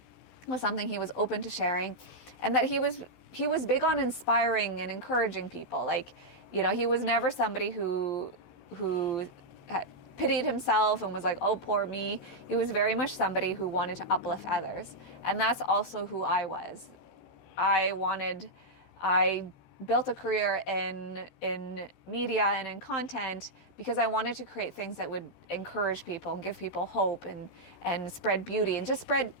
was something he was open to sharing. And that he was big on inspiring and encouraging people. Like, he was never somebody who pitied himself and was like, oh, poor me. He was very much somebody who wanted to uplift others. And that's also who I was. I built a career in media and in content because I wanted to create things that would encourage people and give people hope and spread beauty and just spread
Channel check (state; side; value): late; right; 16 ms